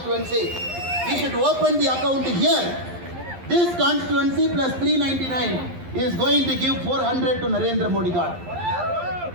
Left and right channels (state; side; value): late; left; 11 ms